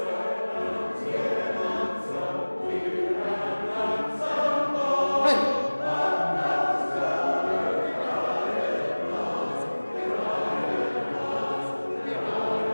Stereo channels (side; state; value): both; inverted; correlation -1.00